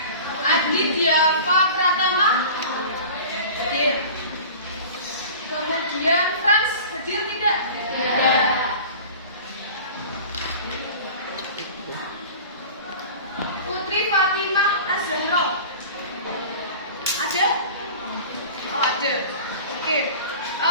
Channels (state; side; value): inverted; both; correlation -0.39